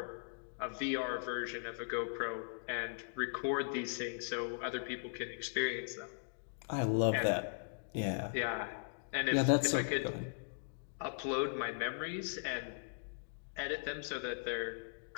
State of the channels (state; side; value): silent; right; digital silence